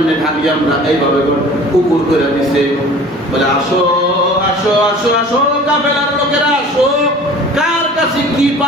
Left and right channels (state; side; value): normal; both; correlation 0.45